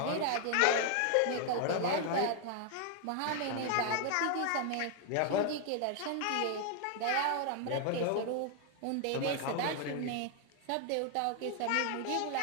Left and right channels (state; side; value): different; both; correlation 0.01